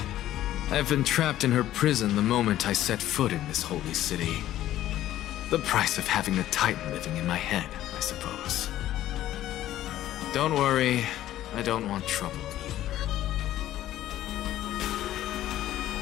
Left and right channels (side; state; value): right; quieter; 13.4 dB